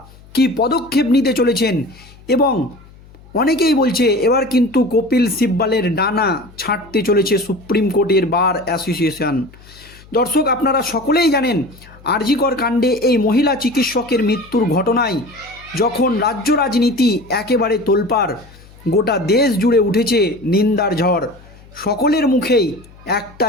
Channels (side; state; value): left; noise; hum, 23 dB below the sound